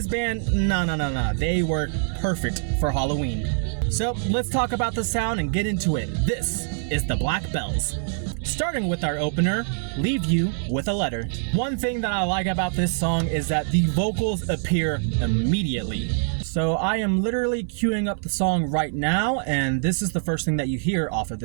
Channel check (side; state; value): left; silent; 62 dB below the other